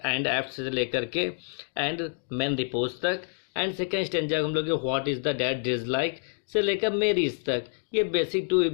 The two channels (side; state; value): right; silent; digital silence